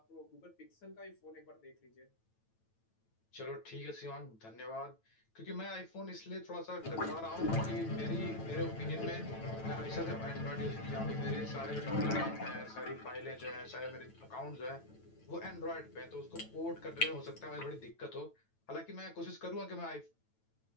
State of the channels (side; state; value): right; late; 9.1 ms